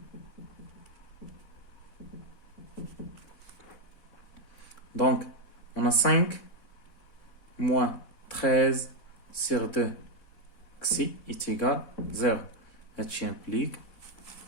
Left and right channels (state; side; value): late; right; 4.1 ms